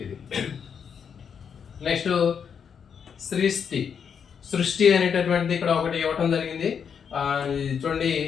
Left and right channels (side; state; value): right; quieter; 7.1 dB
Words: ఇది. నెక్స్ట్ సృష్టి అనేటటువంటిది ఇక్కడ ఒకటి ఇవ్వటం జరిగింది. చూడండి,